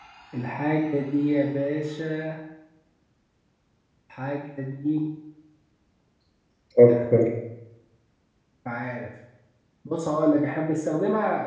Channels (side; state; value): both; identical; correlation 1.00